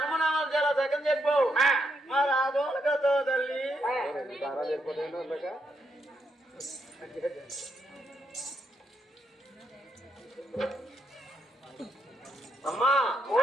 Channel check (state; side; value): normal; both; correlation 0.79